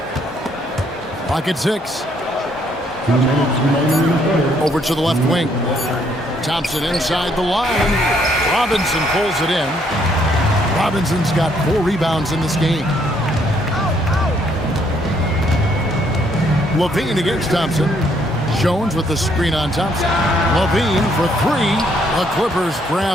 Clock at 6. 2 minutes remaining in the third. Over to the left wing. Thompson inside the line. Robinson pulls it in. Robinson's got 4 rebounds in this game. Levine against Thompson. Jones with the screen on Thompson. Levine for 3. The Clippers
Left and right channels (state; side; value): normal; both; correlation 0.69